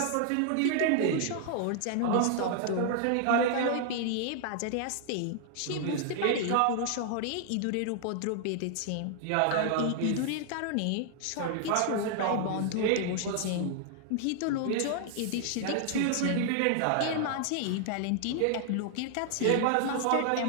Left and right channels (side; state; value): both; different; correlation 0.00